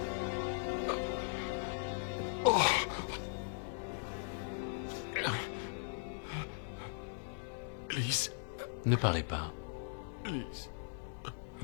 Lise. Ne parlez pas. Lise.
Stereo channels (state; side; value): silent; right; 52 dB below the other